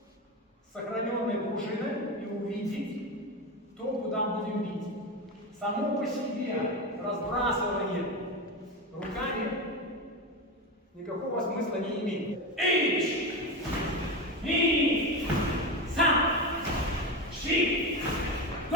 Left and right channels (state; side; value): normal; both; correlation 0.19